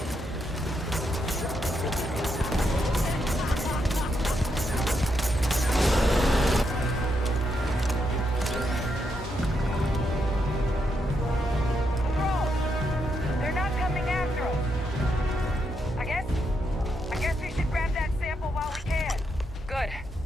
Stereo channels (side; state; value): both; normal; correlation 0.80